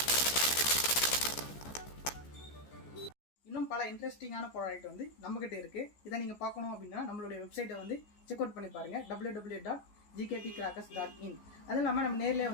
இன்னும் பல இன்ட்ரெஸ்டிங்கான ப்ராடக்ட் வந்து நம்மகிட்ட இருக்குது. இதை நீங்கள் பார்க்கணும் அப்படின்னா நம்மளுடைய வெப்சைட்டை வந்து செக் அவுட் பண்ணி பாருங்கள், www.gktcrackers.in. அதுவும் இல்லாமல் நம்ம நேரில்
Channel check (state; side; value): late; right; 14 ms